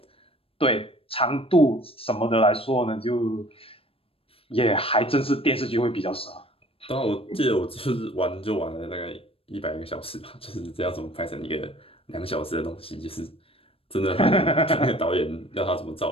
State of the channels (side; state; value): right; late; 0.27 ms